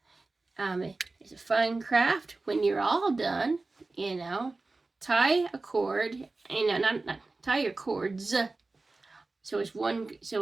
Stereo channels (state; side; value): quieter; left; 3.4 dB